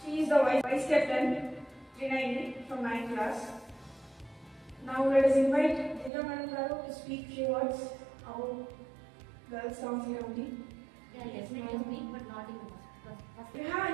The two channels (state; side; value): drops out; left; at 6.1 s